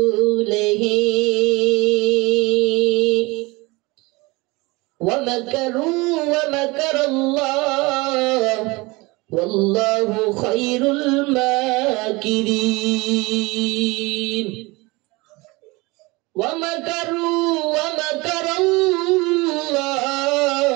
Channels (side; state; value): left; quieter; 24.0 dB